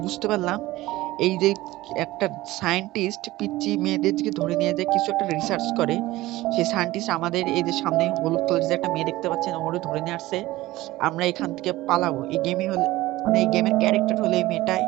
বুঝতে পারলাম, এই যে একটা সায়েন্টিস্ট পিচ্চি মেয়েদের দিকে ধরে নিয়ে যায় কিছু একটা রিসার্চ করে। সেই সায়েন্টিস্ট আমাদের এই যে সামনে হলুদ কালারের যে একটা মেয়ে দেখতে পাচ্ছেন ওরে ধরে নিয়ে আসছে। আমরা এখান থেকে পালাবো। এই গেমই হলে মানে এই গেমের ক্যারেক্টার হলো এই মেয়েটাই।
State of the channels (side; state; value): left; quieter; 17.7 dB